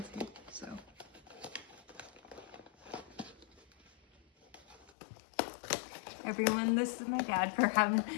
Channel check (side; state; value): right; drops out; at 4.9 s